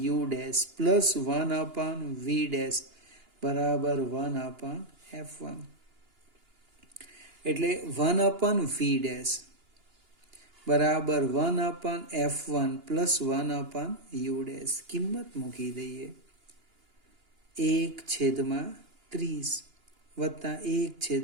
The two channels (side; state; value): left; late; 2.9 ms